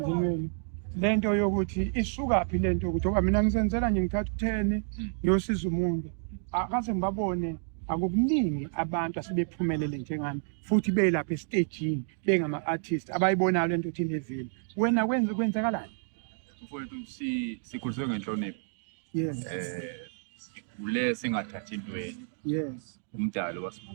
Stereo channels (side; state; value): left; silent; 58 dB below the other